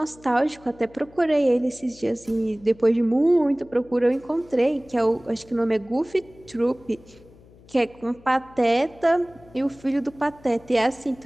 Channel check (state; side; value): noise; left; hum, 25 dB below the sound